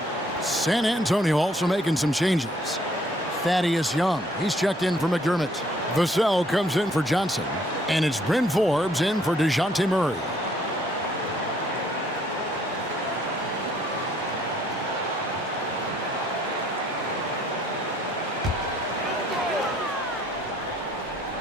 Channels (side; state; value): both; normal; correlation 0.64